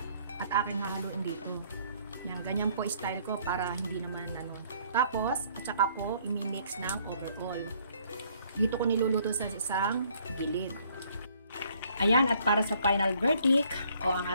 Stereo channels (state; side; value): inverted; both; correlation -0.63